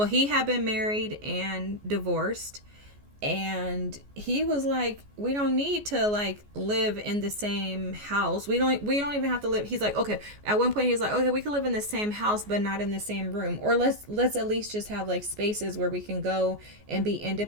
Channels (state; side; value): late; left; 14 ms